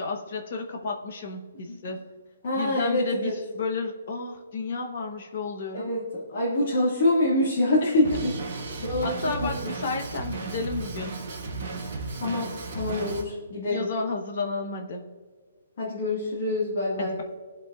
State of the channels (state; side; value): inverted; both; correlation -0.56